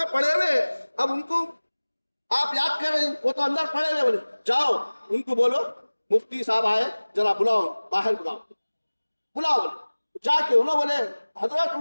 پڑے ہوئے، اب ان کو آپ یاد کر رہے ہیں، وہ تو اندر پڑے ہوئے. بولے جاؤ ان کو بولو مفتی صاحب آئے، ذرا بلاؤ، باہر بلاؤ. جا کے انہوں بولے حضرت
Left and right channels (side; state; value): both; inverted; correlation -1.00